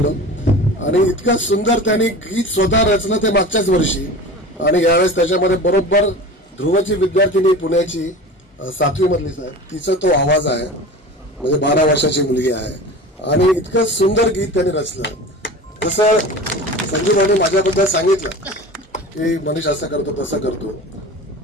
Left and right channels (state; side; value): normal; both; correlation 0.35